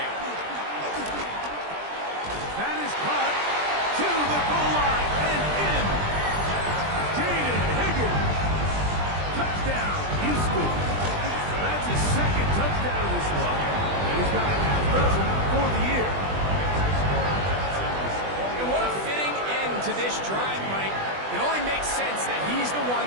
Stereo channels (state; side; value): late; left; 20 ms